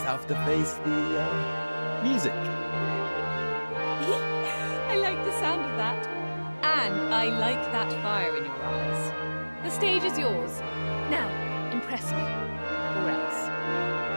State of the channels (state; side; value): inverted; both; correlation -1.00